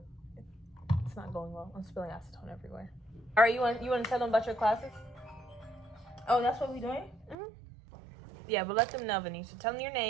it's not going well. I'm spilling acetone everywhere. All right, you want to tell them about your classes? Oh, that's what we doing? Mm-hmm. Yeah, but let them know, Venetia. Tell them your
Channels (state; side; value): drops out; left; at 7.4 s